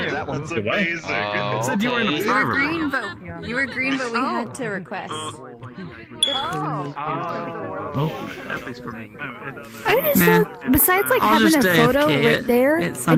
That one's amazing. Said you were in a green, but you were green, but we had to request. I just don't, besides like having a photo right there, I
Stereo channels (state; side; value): identical; both; correlation 1.00